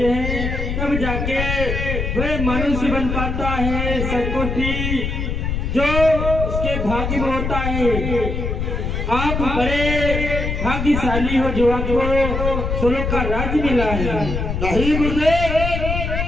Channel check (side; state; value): left; noise; rumble, 2 dB below the sound